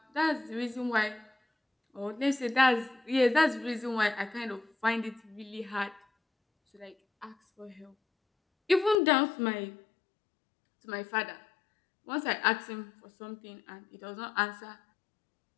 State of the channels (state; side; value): drops out; right; at 9.0 s